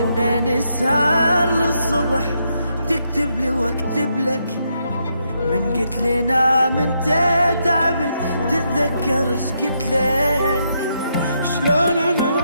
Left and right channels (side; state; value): both; inverted; correlation -0.79